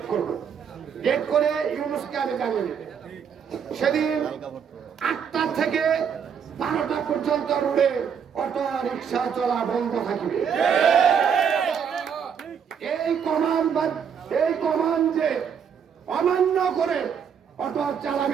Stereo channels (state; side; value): quieter; left; 7.4 dB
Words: করব। ডেট করে ইউনুসকে আমি জানিয়ে দেব। সেদিন 8টা থেকে 12টা পর্যন্ত রোডে অটো রিক্সা চলা বন্ধ থাকবে। এই কমান যে অমান্য করে অটো